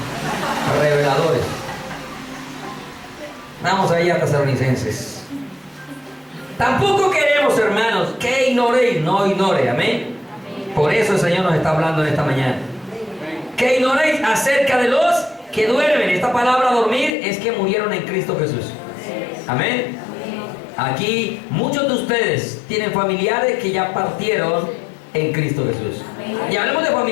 reveladores. Vamos ahí a Tesalonicenses. Tampoco queremos, hermanos, que ignoréis, no ignore, amén. Por eso el Señor nos está hablando en esta mañana. Que ignoréis acerca de los que duermen. Esta palabra dormir es que murieron en Cristo Jesús. Amén. Aquí muchos de ustedes tienen familiares que ya partieron en Cristo Jesús. Y hablemos de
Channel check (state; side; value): drops out; right; at 17.2 s